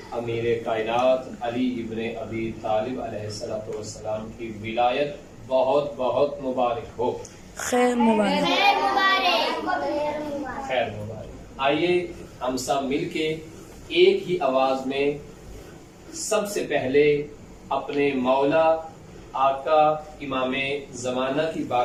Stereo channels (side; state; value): both; identical; correlation 1.00